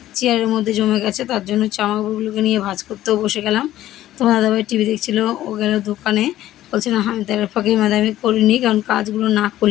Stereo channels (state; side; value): quieter; right; 13.8 dB